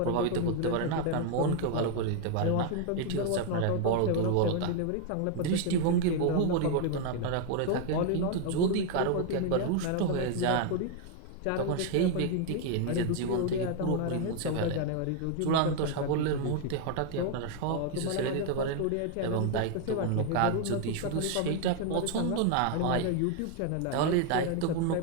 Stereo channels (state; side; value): different; both; correlation 0.00